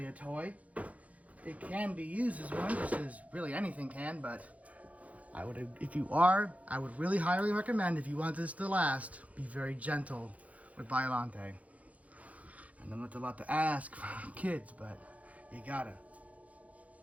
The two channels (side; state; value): left; late; 0.068 ms